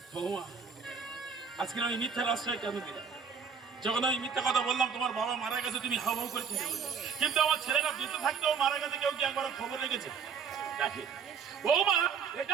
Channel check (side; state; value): left; quieter; 6.2 dB